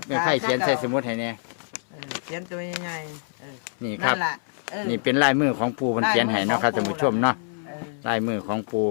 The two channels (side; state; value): right; silent; 62 dB below the other